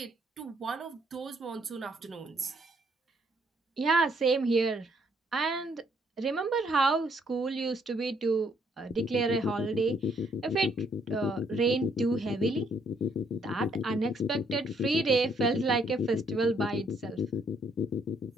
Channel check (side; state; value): both; normal; correlation 0.68